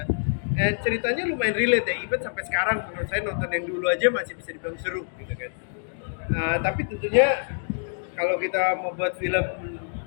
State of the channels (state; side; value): silent; right; digital silence